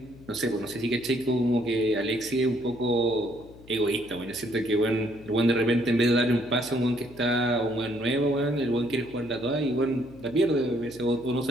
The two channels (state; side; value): noise; left; hum, 21 dB below the sound